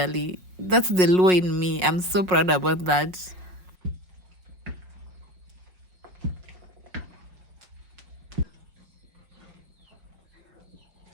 That's the law in me. I'm so proud about that.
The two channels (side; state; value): left; late; 5.5 ms